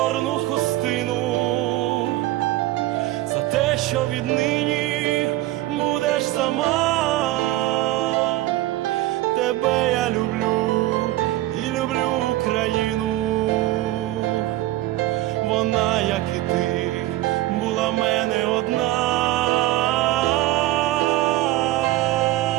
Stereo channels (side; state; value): left; quieter; 16.4 dB